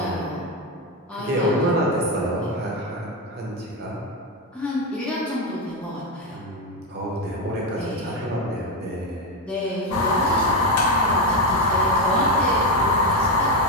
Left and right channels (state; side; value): normal; both; correlation 0.09